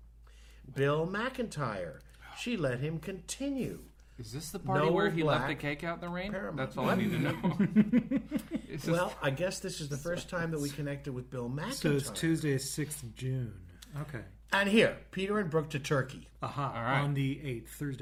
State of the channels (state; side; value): identical; both; correlation 1.00